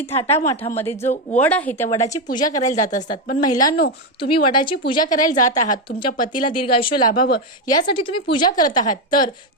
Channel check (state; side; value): normal; both; correlation 0.08